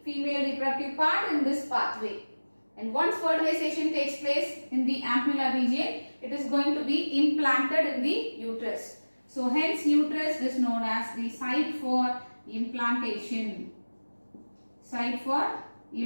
female reproductive part in this pathway. And once fertilization takes place in the ampulla region, it is going to be implanted in the uterus. So hence uterus is known as the site for implantation. Site for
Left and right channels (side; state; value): both; inverted; correlation -1.00